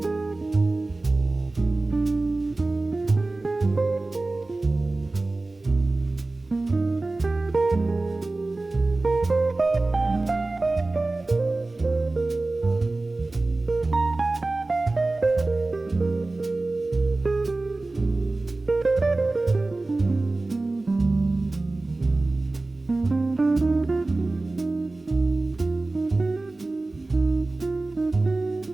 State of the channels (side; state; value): left; quieter; 3.1 dB